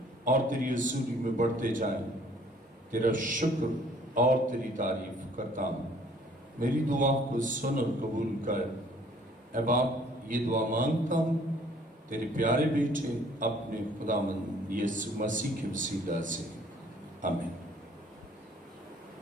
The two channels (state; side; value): normal; both; correlation 0.57